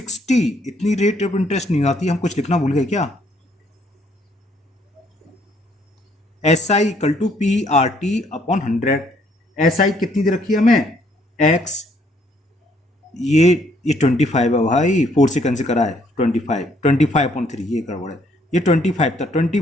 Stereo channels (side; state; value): both; normal; correlation 0.67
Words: इतनी रेट ऑफ इंटरेस्ट नहीं आती, हम कुछ लिखना भूल गए क्या। SI equal to PRT upon 100। SI कितनी दे रखी है हमें x, ये 25 है भाई, 4 से कैंसिल करा है 25/3 ये गड़बड़ है, ये 25 था,